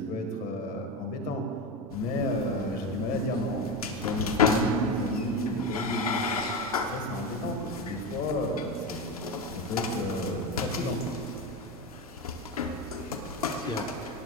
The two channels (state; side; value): normal; both; correlation 0.18